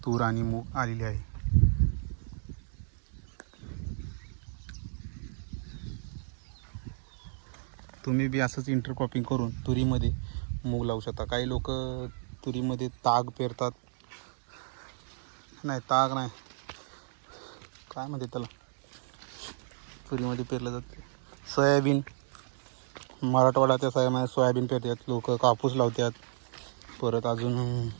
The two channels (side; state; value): left; silent; digital silence